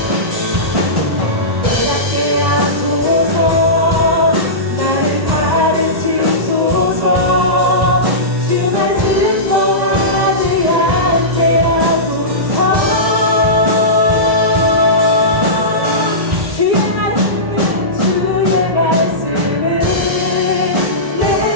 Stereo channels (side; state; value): left; late; 1.1 ms